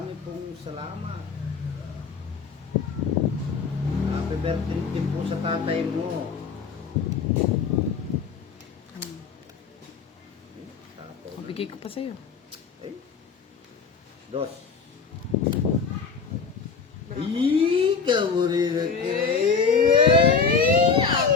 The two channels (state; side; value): quieter; right; 5.6 dB